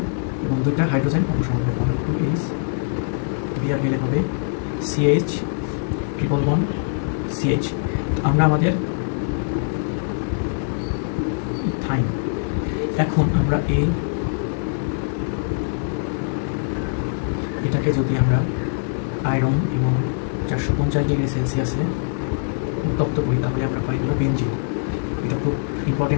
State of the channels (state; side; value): silent; right; digital silence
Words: এবং 2টা হাইড্রোজেন অপসারণ হবে, তাহলে 2H Br মিলে হবে CH ট্রিপল বন্ড CH। আমরা আমাদের ইথাইন। এখন আমরা এটাকে যদি আমরা আয়রন এবং 450 ডিগ্রি সেলসিয়াসে উত্তপ্ত করি তাহলে আমরা পাই হলো বেনজিন। এটা খুব